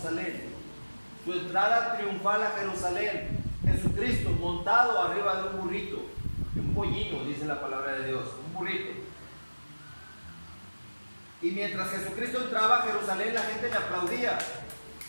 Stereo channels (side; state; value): both; inverted; correlation -1.00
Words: Su entrada triunfal a Jerusalén. Jesucristo montado arriba de un burrito, de un pollino, dice la palabra de Dios, un burrito. Y mientras Jesucristo entraba a Jerusalén, la gente le aplaudía.